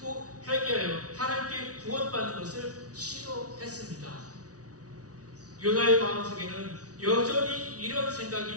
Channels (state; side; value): late; left; 0.67 ms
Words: 회개하여 하나님께 구원받는 것을 싫어했습니다. 요나의 마음속에는 여전히 이런